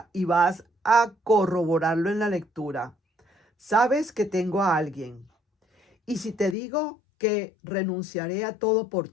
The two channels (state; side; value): drops out; right; at 6.6 s